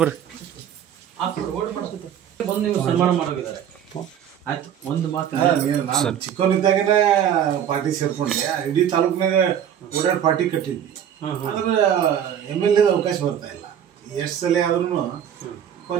ಬರ್ರಿ. ಬಂದು ನೀವು ಸನ್ಮಾನ ಮಾಡೋಗಿದ್ದಾರೆ. ಆಯ್ತು ಒಂದು ಮಾತು ನಾನು ಚಿಕ್ಕವನಿದ್ದಾಗನೇ ಪಾರ್ಟಿ ಸೇರ್ಕೊಂಡೆ, ಇಡೀ ತಾಲೂಕಿನಾಗ ಓಡಾಡಿ ಪಾರ್ಟಿ ಕಟ್ಟಿದ್ವಿ. ಆದ್ರೆ MLA ಅವಕಾಶ ಬರ್ತಾ ಇಲ್ಲ. ಎಷ್ಟು ಸಲ ಆದ್ರೂ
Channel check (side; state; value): left; quieter; 9.4 dB